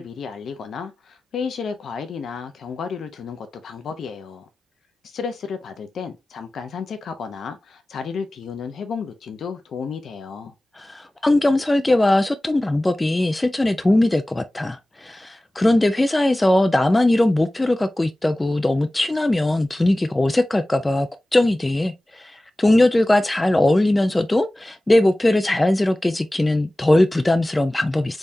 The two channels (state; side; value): normal; both; correlation 0.97